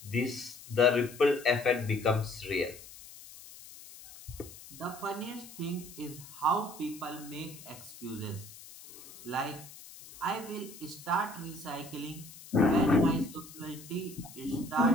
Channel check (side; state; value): left; noise; hiss, 17 dB below the sound